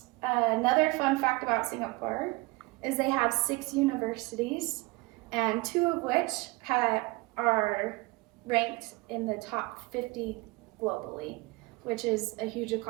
Another fun fact about Singapore is they have 6 universities, and 2 of which are ranked in the top 50 globally, which is a huge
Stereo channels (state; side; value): quieter; left; 23.6 dB